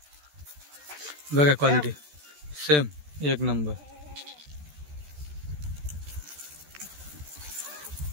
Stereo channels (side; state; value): left; late; 14 ms